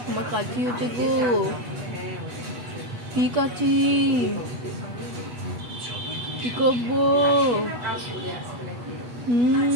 আমার কাছি হচ্ছে গো। কি কাছি? কি করবো?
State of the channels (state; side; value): late; left; 8.2 ms